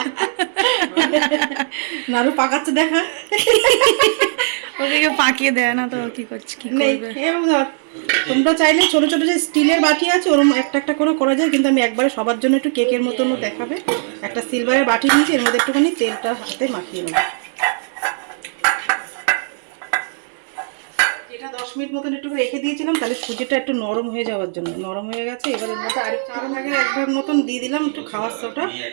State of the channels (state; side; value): silent; left; 65 dB below the other